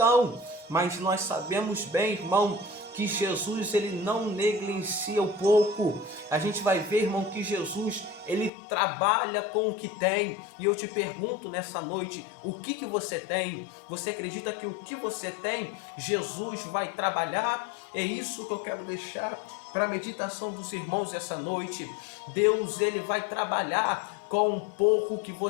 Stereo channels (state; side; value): drops out; right; at 8.5 s